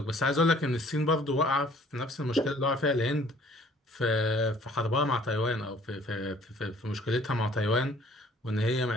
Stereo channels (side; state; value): both; normal; correlation 0.56